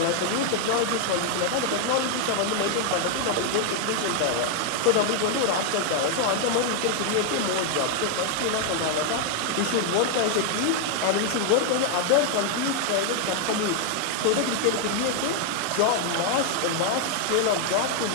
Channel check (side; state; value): both; different; correlation 0.00